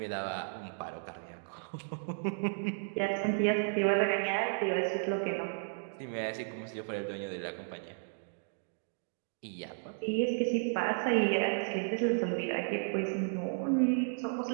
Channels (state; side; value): silent; left; digital silence